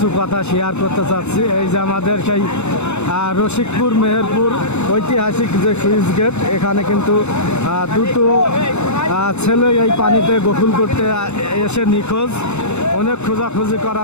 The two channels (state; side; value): late; right; 0.82 ms